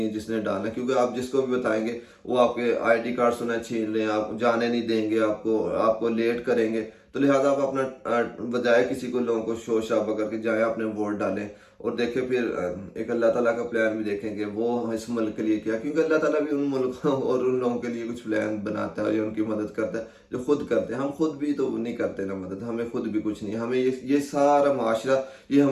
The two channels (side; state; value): both; identical; correlation 1.00